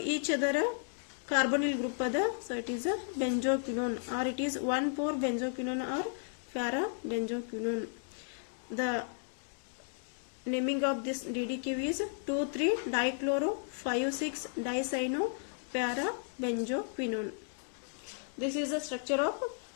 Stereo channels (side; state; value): right; silent; digital silence